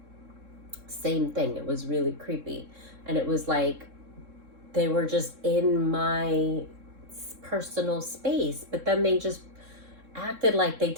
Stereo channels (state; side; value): late; left; 3.7 ms